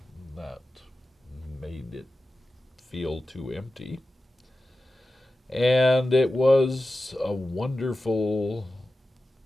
that made it feel too empty. And it was a wonderful,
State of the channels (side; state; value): both; normal; correlation 0.93